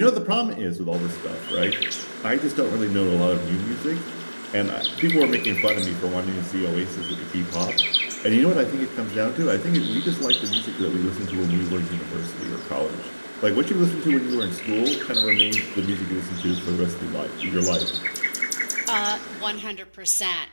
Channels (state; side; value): inverted; both; correlation -1.00